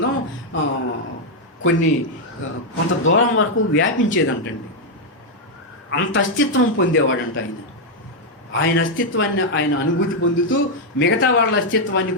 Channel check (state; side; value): normal; both; correlation 0.00